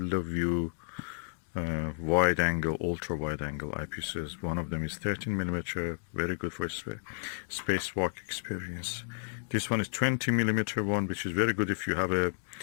of view wide angle, ultra wide angle eyepieces. One of them is 13mm, very good for spacewalk experience. This one is 20mm one, which is very good if you have a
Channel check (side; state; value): right; silent; digital silence